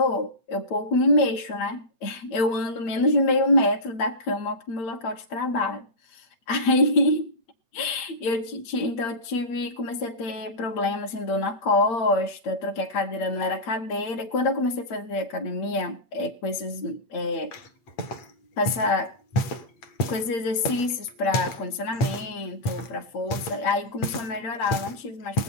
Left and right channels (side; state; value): right; late; 8.6 ms